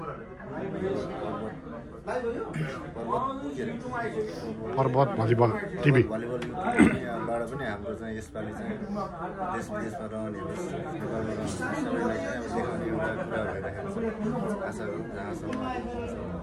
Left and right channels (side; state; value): both; identical; correlation 1.00